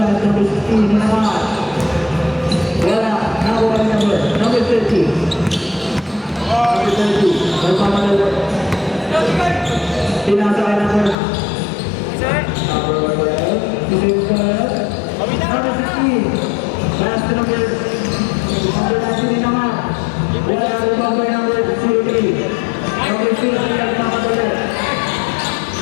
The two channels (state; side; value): drops out; right; at 11.2 s